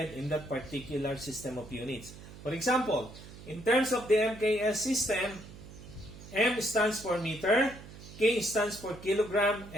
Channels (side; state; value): right; noise; hum, 16 dB below the sound